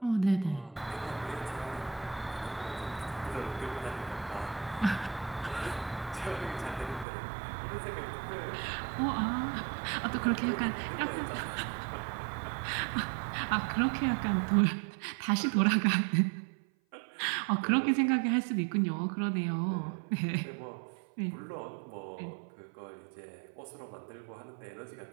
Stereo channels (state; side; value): drops out; left; at 7.1 s